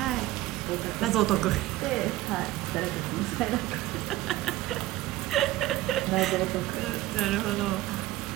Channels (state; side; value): quieter; left; 16.5 dB